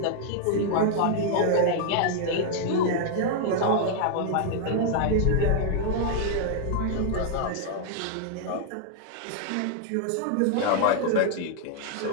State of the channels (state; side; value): different; both; correlation 0.00